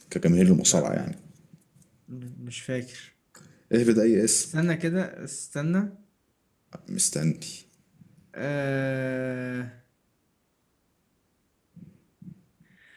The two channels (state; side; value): identical; both; correlation 1.00